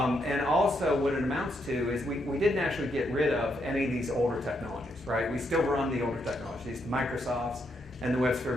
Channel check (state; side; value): normal; both; correlation 0.78